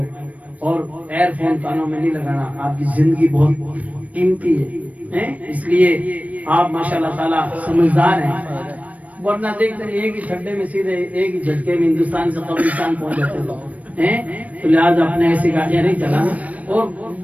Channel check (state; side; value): late; left; 0.069 ms